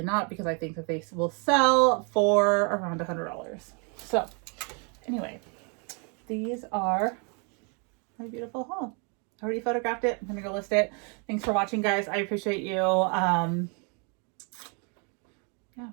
not, because I think that they will sell for around $100. So anyway, these are my beautiful haul. I already photographed it. I'm going to go list it. Thanks for watching, guys. I appreciate you. Yeah,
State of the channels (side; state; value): left; quieter; 36.2 dB